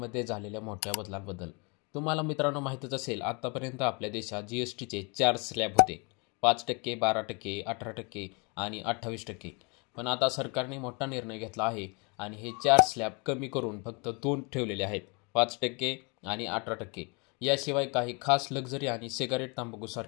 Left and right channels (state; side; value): quieter; right; 31.4 dB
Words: झालेल्या मोठ्या बदलांबद्दल. तुम्हाला मित्रांनो माहीतच असेल, आत्तापर्यंत आपल्या देशात जीएसटीचे 4 स्लॅब होते: 5%, 12%, 18% आणि 28%. पण आता सरकारने मोठा निर्णय घेतला आहे आणि हे 4 स्लॅब कमी करून फक्त 2 ठेवलेले आहेत: 5% आणि 18%. याशिवाय काही खास लक्झरी आणि सिगारेट,